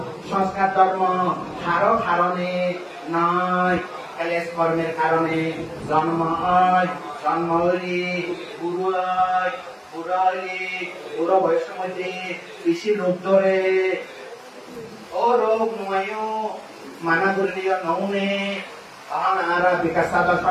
সংস্কার ধর্ম হারো কারণে নয় ক্লেশ কর্মের কারণে জন্ম হয় জন্ম হইলি বুড়ো হয় বুড়ো হইলি বুড়ো বয়সের মধ্যে বেশি রোগ ধরে ও রোগ নয় মানা করলিও নৌনে তখন আর বিকাশ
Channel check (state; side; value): identical; both; correlation 1.00